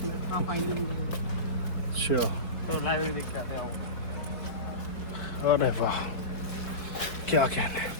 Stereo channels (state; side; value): late; right; 4.3 ms